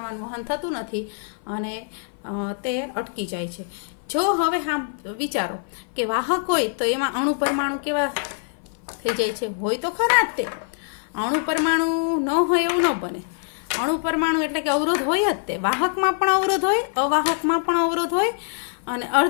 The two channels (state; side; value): silent; right; 57 dB below the other